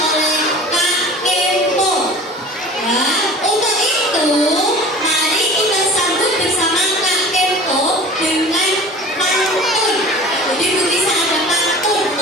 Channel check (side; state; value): both; normal; correlation 0.41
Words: Kak Kempo. Ya, untuk itu mari kita sambut bersama Kak Kempo dengan pantun. Jadi bisa ada pantun